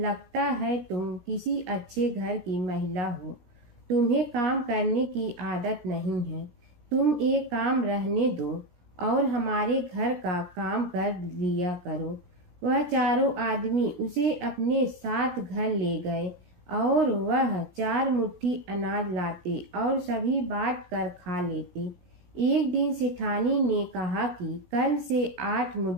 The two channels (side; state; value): left; late; 17 ms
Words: है तुम किसी अच्छे घर की महिला हो। तुम्हें काम करने की आदत नहीं है। तुम एक काम रहने दो और हमारे घर का काम कर लिया करो। वह चारों आदमी उसे अपने साथ घर ले गए और वह 4 मुट्ठी अनाज लाते और सभी बांट कर खा लेते। एक दिन सेठानी ने कहा कि कल से 8